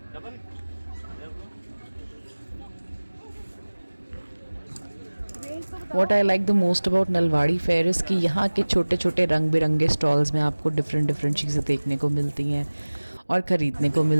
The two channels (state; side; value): inverted; both; correlation -1.00